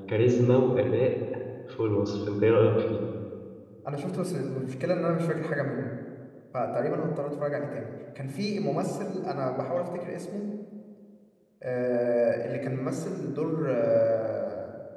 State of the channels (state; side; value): identical; both; correlation 1.00